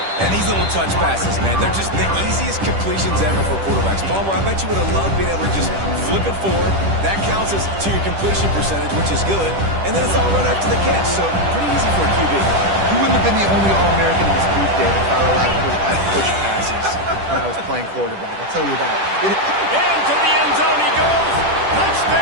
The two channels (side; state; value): left; late; 10 ms